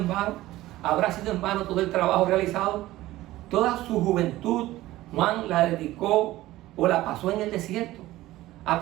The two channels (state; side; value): quieter; left; 16.5 dB